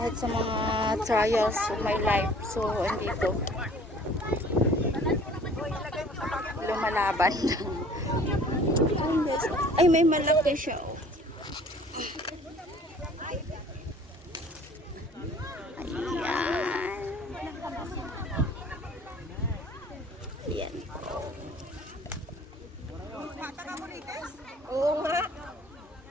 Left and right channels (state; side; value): normal; both; correlation 0.51